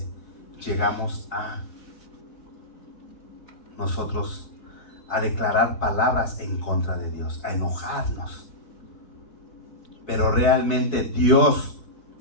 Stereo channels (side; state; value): right; late; 4.6 ms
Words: Llegamos a nosotros a declarar palabras en contra de Dios, a enojarnos. Pero realmente Dios,